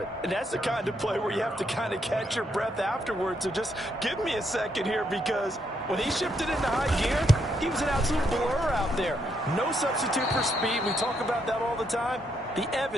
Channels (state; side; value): normal; both; correlation 0.76